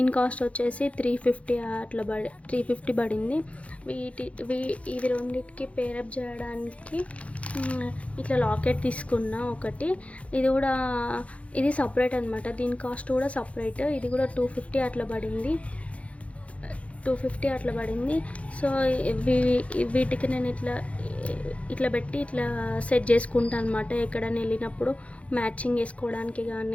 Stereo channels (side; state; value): right; late; 0.064 ms